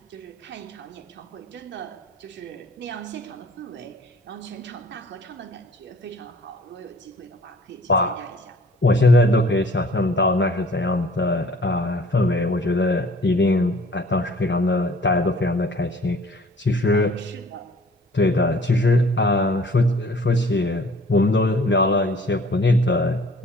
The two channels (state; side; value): normal; both; correlation 0.52